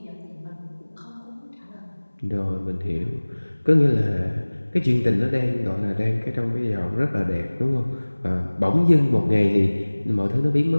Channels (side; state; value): both; inverted; correlation -1.00